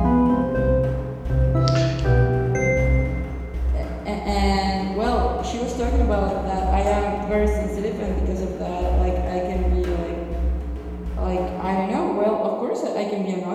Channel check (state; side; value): identical; both; correlation 1.00